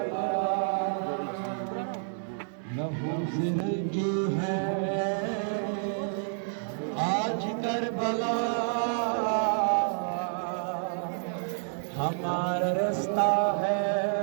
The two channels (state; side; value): silent; left; digital silence